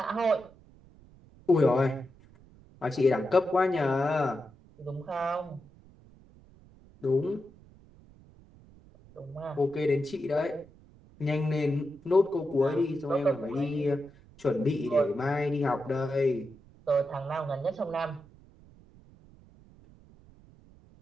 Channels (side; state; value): right; noise; rumble, 25 dB below the sound